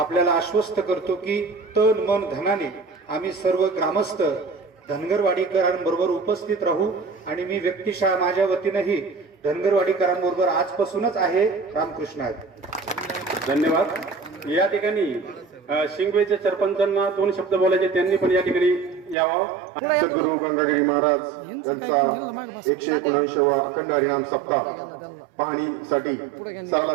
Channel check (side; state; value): left; drops out; at 19.2 s